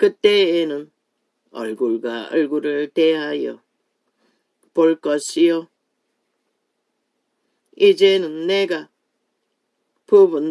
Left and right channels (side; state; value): both; identical; correlation 1.00